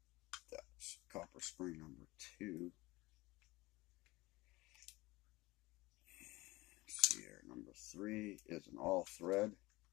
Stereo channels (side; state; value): right; quieter; 20.9 dB